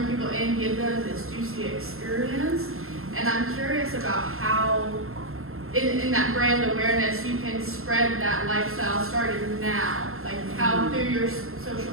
people in, give them this juicy experience. And I'm curious about how, in that brand awareness, you can spread that lifestyle starting now. Like how through your social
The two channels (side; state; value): left; late; 0.62 ms